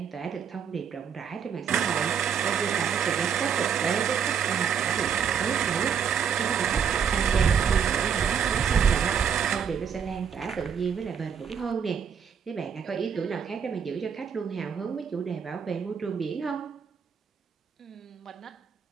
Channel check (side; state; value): left; quieter; 7.3 dB